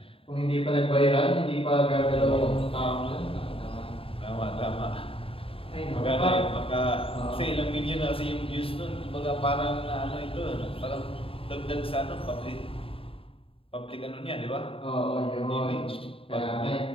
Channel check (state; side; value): late; right; 0.27 ms